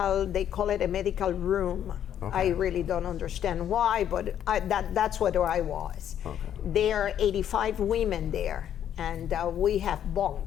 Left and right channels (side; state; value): right; quieter; 10.0 dB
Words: they call it a medical room. Okay. I really don't understand why, but that's what I was. Okay. There are 85 women there, and we have